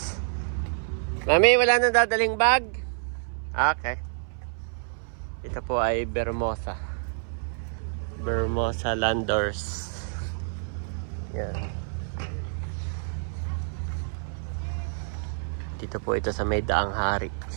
Mami, wala nang dadaling bag? Okay. Ito po ay Bermosa. Bermosa Landers. Yan. Dito po ito sa may Daang Hari.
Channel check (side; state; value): left; silent; 59 dB below the other